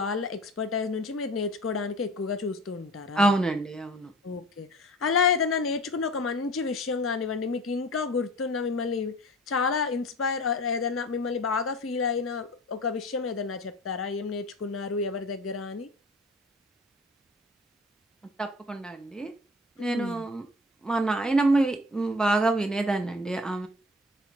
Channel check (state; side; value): normal; both; correlation 0.41